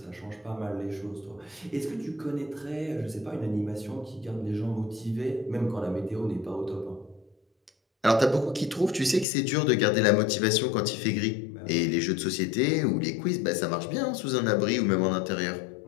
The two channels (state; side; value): drops out; right; at 9.2 s